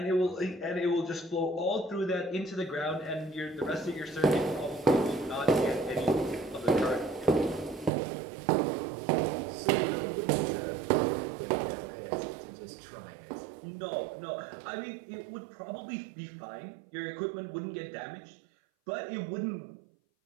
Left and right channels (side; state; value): left; drops out; at 7.9 s